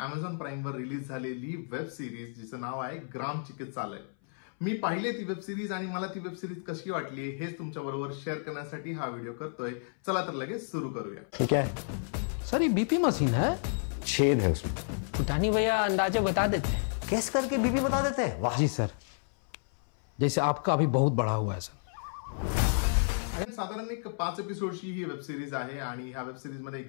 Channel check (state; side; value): silent; right; 57 dB below the other